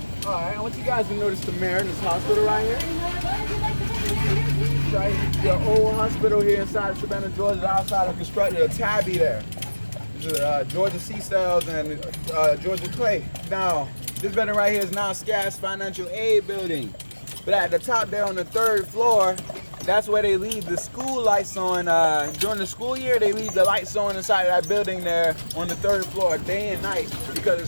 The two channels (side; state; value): both; inverted; correlation -1.00